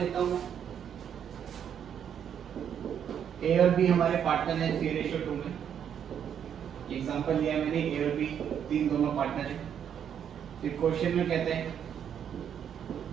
हूँ। ए और बी हमारे पार्टनर है 3:2 में। एग्जांपल लिया मैंने, ए और बी तीन दोनों पार्टनर है। फिर क्वेश्चन में कहते हैं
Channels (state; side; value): quieter; left; 8.6 dB